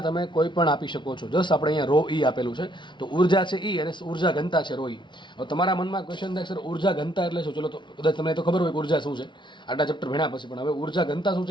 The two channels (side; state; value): right; late; 0.23 ms